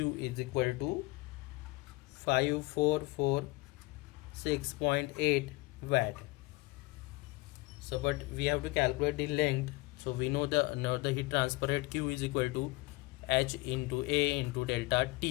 equal to 5446.8 watt. So but we have to calculate the length. So we know the heat transfer rate Q is equal to H into A into delta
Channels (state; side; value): quieter; right; 22.6 dB